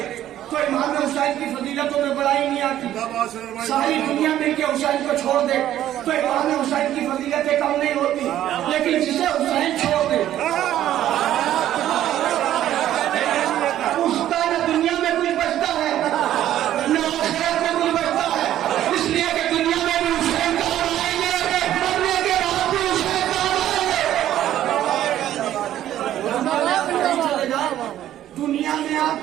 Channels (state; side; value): quieter; left; 12.2 dB